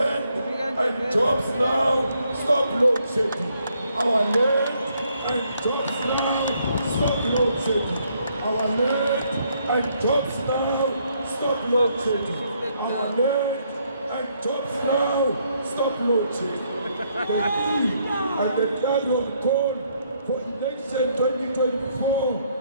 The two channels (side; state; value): both; inverted; correlation -0.72